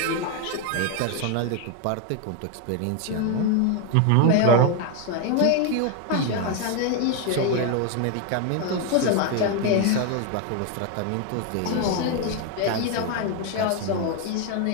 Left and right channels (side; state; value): both; different; correlation 0.01